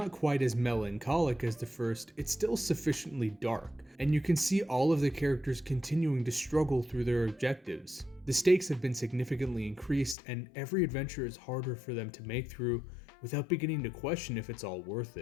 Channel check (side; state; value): right; drops out; at 10.2 s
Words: quite as melancholic as the first, it's still sufficiently dark, and you can see all of the characters continuing to struggle through their objectives. The stakes have been significantly increased, and every adventure is harder for them to make through without beginning to question if it's all worth